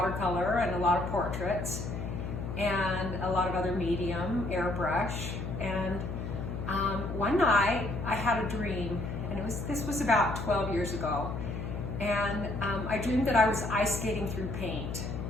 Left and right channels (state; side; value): noise; left; hum, 5 dB below the sound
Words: and a lot of portraits and a lot of other medium, airbrush. And one night I had a dream, and this was about 12 years ago, and I dreamed that I was ice skating through paint,